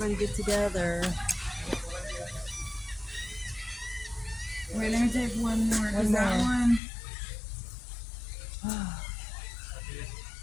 get together. Wait, let me take one more. One Is that more. one?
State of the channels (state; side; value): drops out; right; at 6.8 s